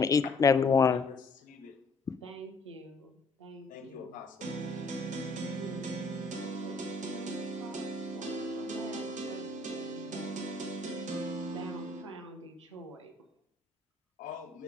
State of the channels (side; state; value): right; quieter; 3.4 dB